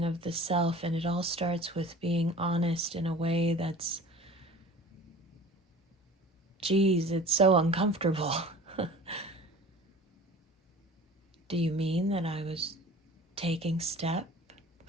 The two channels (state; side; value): normal; both; correlation 0.43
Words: of the self. And it all starts with being honest in a way that's, geez, it's so uncomfortable. Do you mean that I was taking step